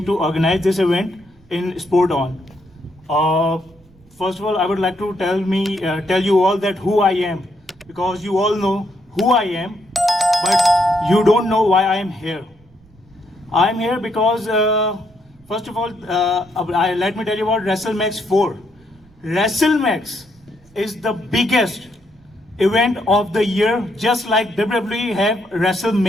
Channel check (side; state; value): right; noise; rumble, 30 dB below the sound